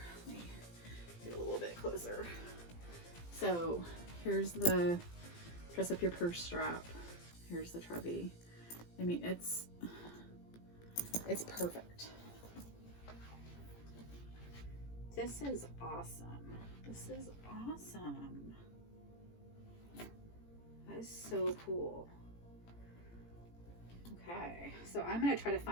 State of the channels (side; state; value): right; late; 18 ms